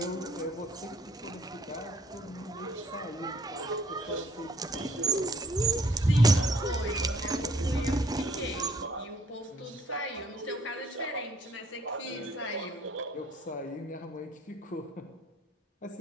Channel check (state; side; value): normal; both; correlation 0.61